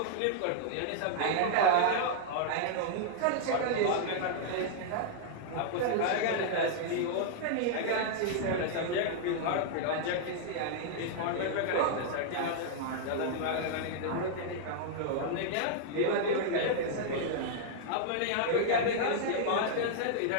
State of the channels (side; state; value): both; different; correlation -0.01